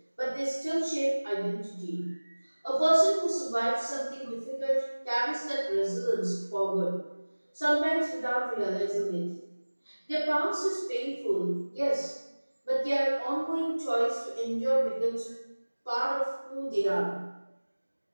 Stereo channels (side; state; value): both; inverted; correlation -1.00